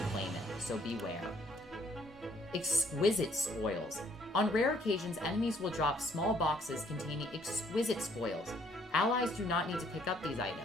claim it, so beware. Exquisite spoils. On rare occasions, enemies will drop small boxes containing exquisite spoils. Allies do not need to pick up these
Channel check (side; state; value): both; normal; correlation 0.65